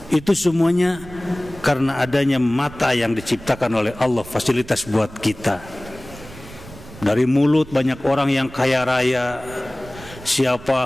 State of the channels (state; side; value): noise; right; rumble, 18 dB below the sound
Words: Itu semuanya karena adanya mata yang diciptakan oleh Allah, fasilitas buat kita. Dari mulut banyak orang yang kaya raya. Siapa?